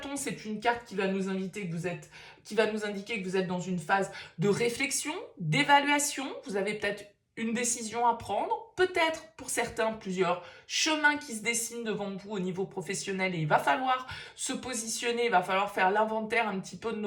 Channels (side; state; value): both; identical; correlation 1.00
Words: c'est une carte qui va nous inviter que vous êtes qui va nous indiquer que vous êtes dans une phase de réflexion, d'évaluation. Vous avez peut-être une décision à prendre, peut-être pour certains plusieurs chemins qui se dessinent devant vous au niveau professionnel et il va falloir se positionner, il va falloir faire l'inventaire un petit peu de